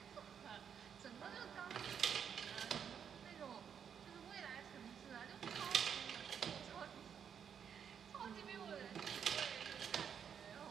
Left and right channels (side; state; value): left; quieter; 7.8 dB